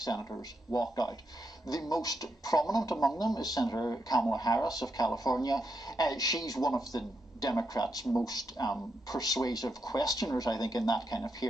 walked out. The most prominent among them is Senator Kamala Harris of California. She's one of the Democrats' most persuasive questioners, I think, in that kind of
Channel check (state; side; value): normal; both; correlation 0.82